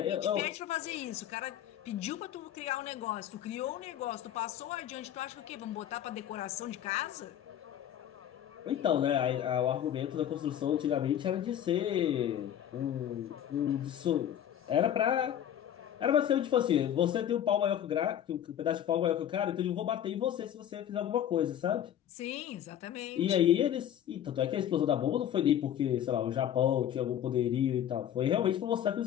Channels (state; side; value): quieter; right; 10.5 dB